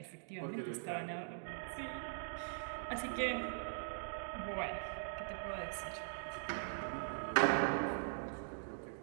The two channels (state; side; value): silent; left; digital silence